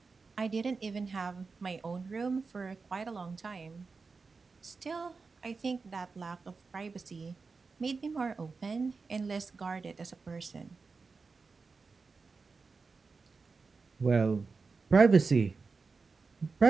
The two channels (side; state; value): left; quieter; 4.5 dB